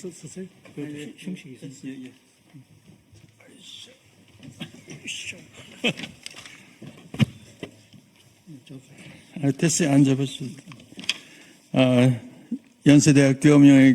테스에 앉아보겠습니다. 연세대학교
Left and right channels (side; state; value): both; identical; correlation 1.00